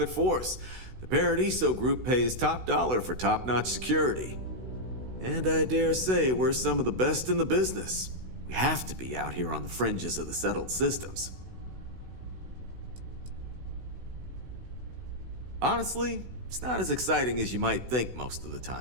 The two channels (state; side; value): late; left; 16 ms